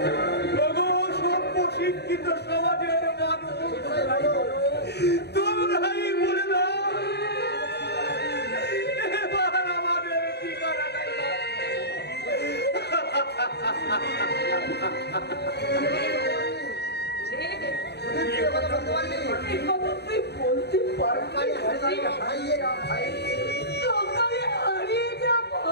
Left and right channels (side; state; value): right; late; 0.48 ms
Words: সভ্য শিক্ষিত সমাজের মানুষ তোমরাই বলে দাও এবার আমাদের ঠিকানাটাই তুই বলতে পারবি সকালে হারিয়ে যা